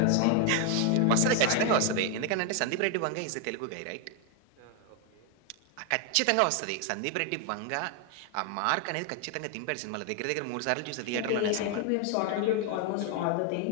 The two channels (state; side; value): different; both; correlation 0.00